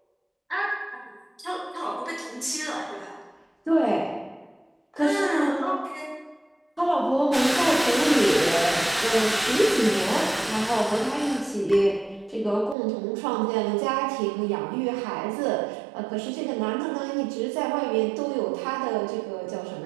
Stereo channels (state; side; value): drops out; left; at 12.8 s